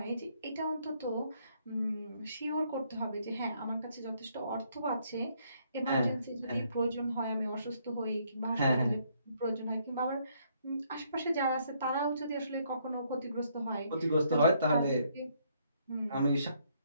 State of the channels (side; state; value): both; inverted; correlation -0.70